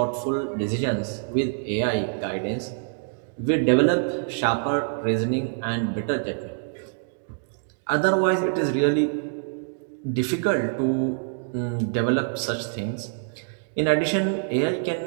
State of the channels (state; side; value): silent; left; digital silence